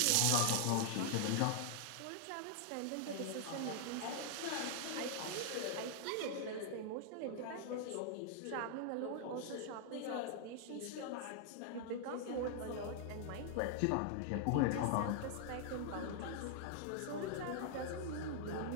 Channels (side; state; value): both; different; correlation 0.00